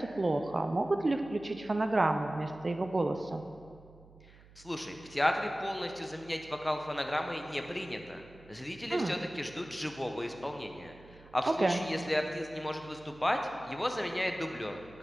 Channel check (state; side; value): noise; right; hum, 23 dB below the sound